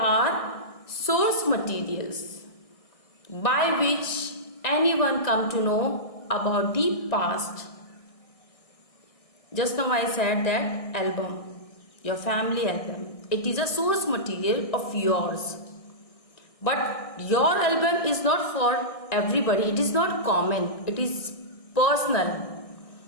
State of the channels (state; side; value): late; right; 1.6 ms